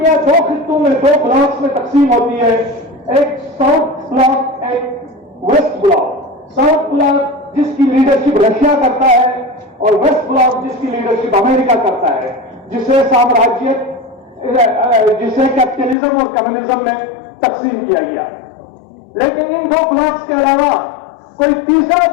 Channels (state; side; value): drops out; right; at 16.0 s